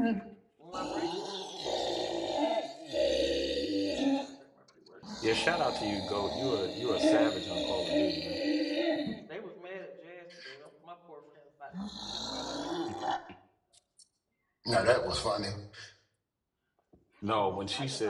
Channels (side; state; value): both; identical; correlation 1.00